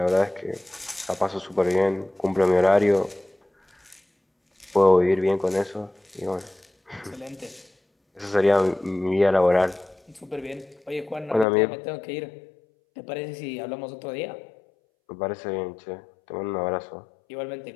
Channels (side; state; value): right; drops out; at 11.5 s